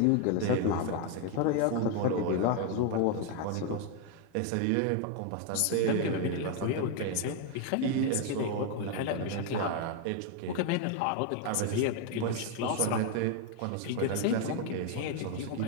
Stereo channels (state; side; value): different; both; correlation 0.01